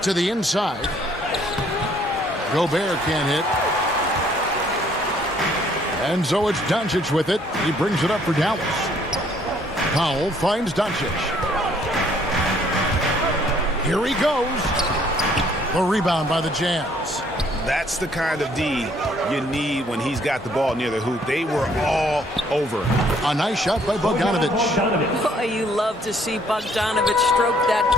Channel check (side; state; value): both; normal; correlation 0.63